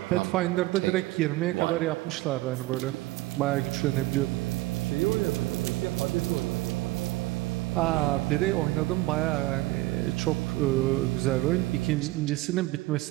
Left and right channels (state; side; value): quieter; left; 19.2 dB